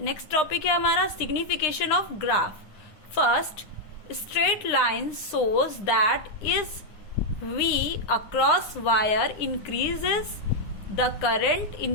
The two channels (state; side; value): late; right; 9.8 ms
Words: टॉपिक है हमारा signification of graph. First, straight line shows that is V across wire increases the current